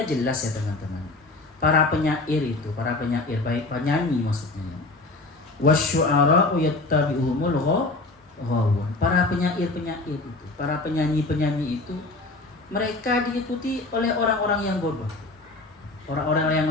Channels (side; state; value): right; quieter; 3.2 dB